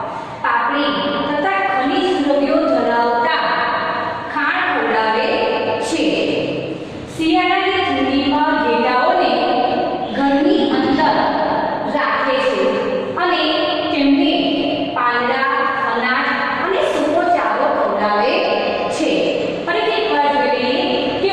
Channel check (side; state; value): both; identical; correlation 1.00